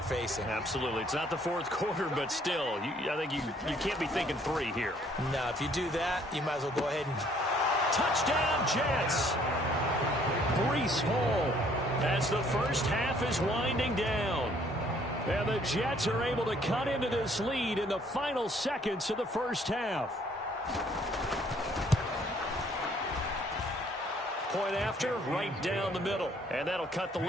facing. Absolutely. It's not the fourth quarter, but still, I think you can't be thinking 3 here. No, if you do that, you might as well go ahead and... Touchdown, Jets! Breece Hall as the first half is winding down. And the Jets are able to cut into this lead in the final seconds of the first half. Point after, right down the middle. And that'll cut the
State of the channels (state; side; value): normal; both; correlation 0.62